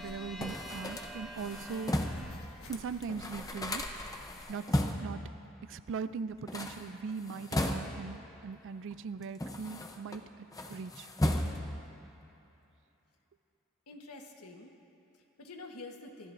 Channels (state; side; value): normal; both; correlation 0.70